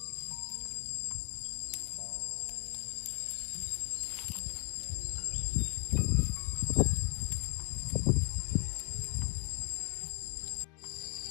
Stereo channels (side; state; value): right; quieter; 31.7 dB